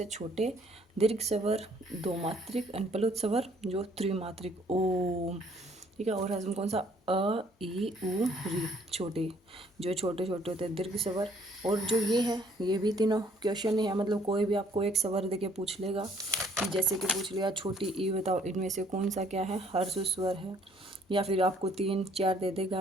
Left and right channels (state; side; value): normal; both; correlation 0.62